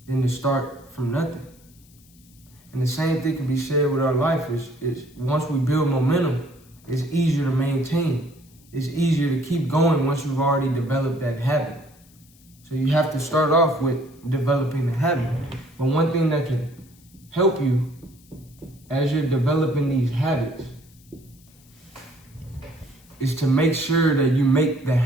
than to start from nothing. And the same thing can be said with our life. Is once we build momentum, it's easier to maintain. It's easier to keep going once you've already developed that habit. So you have to start off with developing the habit. But one thing that can help you as you're developing these habits is to make sure that you make the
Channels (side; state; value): left; noise; hiss, 28 dB below the sound